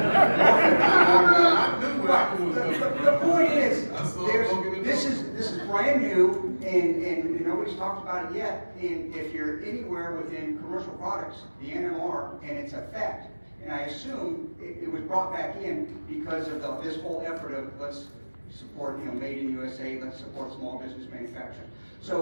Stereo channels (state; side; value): inverted; both; correlation -1.00